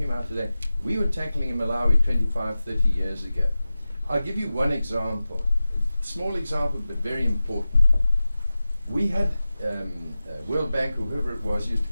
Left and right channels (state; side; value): inverted; both; correlation -0.95